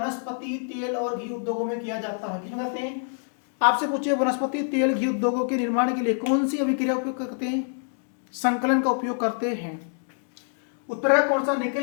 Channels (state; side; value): silent; right; 61 dB below the other